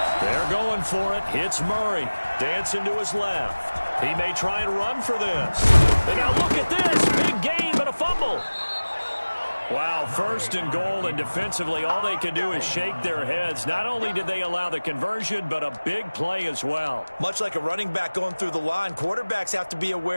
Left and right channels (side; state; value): both; inverted; correlation -1.00